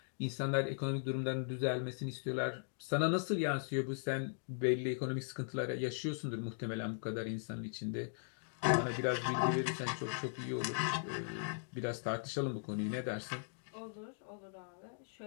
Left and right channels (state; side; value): silent; right; digital silence